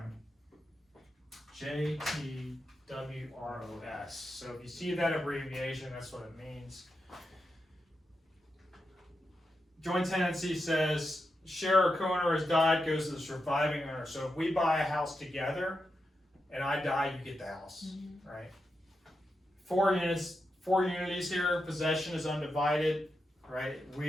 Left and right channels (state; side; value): normal; both; correlation 0.87